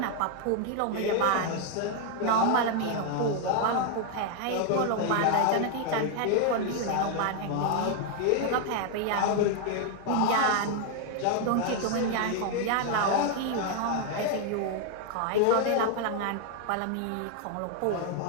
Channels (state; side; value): different; both; correlation 0.00